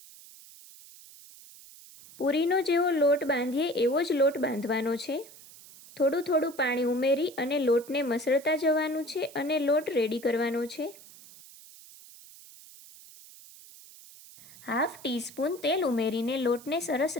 પૂરીનો જેવો લોટ બાંધીએ એવો જ લોટ બાંધવાનો છે. થોડું પાણી ઉમેરી અને લોટને મસળતા જવાનું છે અને લોટ રેડી કરવાનો છે. હાફ ટીસ્પૂન તેલ ઉમેરીને લોટને સરસ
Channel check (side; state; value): right; noise; hiss, 20 dB below the sound